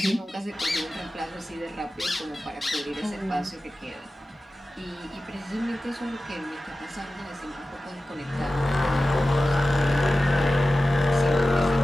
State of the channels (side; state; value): both; normal; correlation 0.95